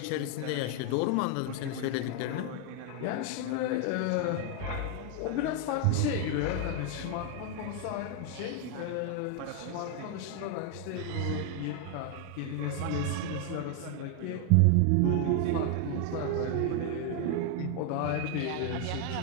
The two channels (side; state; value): both; different; correlation 0.01